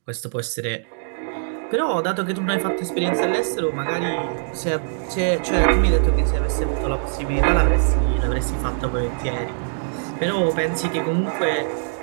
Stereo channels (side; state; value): left; silent; digital silence